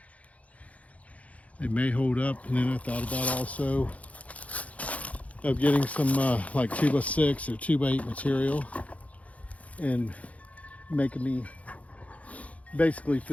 They may hold up, and then I thought about also of getting some like 2x6 or 2x8 material and making me basically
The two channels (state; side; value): late; right; 0.067 ms